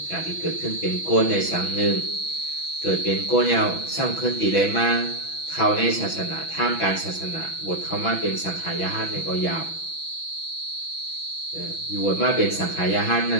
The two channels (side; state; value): right; late; 6.0 ms